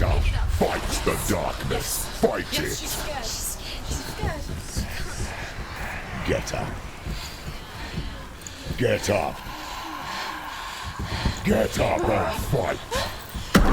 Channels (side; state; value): both; identical; correlation 1.00